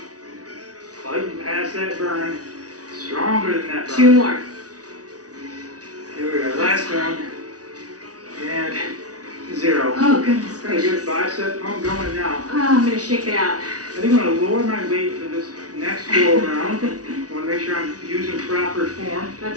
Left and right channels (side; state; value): left; late; 0.68 ms